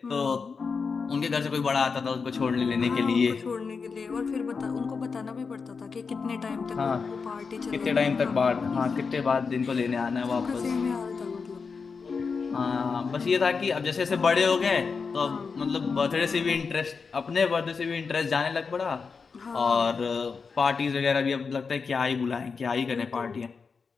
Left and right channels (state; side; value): quieter; right; 5.2 dB